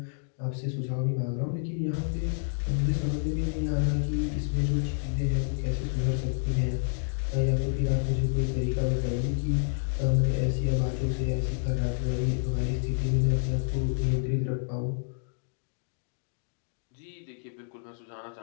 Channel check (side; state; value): right; silent; digital silence